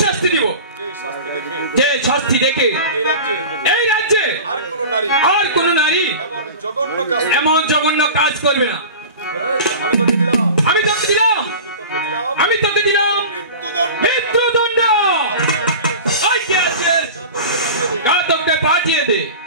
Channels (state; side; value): inverted; both; correlation -0.35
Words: শাস্তি দিব যে শাস্তি দেখে এই রাজ্যে আর কোন নারী এমন জঘন্য কাজ করবে না। আমি তোকে দিলাম মৃত্যুদণ্ড। ঘাতককে পাঠিয়ে দে।